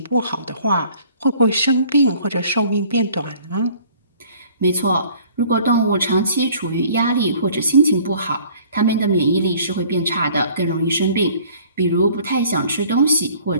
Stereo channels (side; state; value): both; inverted; correlation -0.54